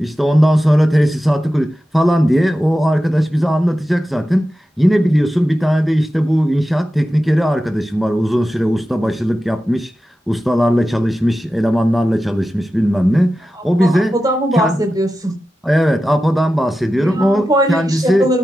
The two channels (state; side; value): normal; both; correlation 0.92